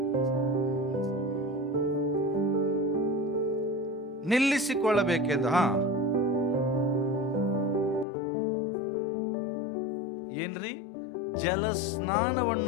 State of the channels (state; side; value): drops out; right; at 8.1 s